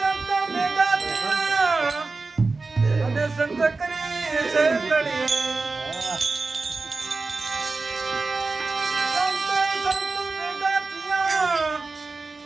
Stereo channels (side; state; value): left; quieter; 3.8 dB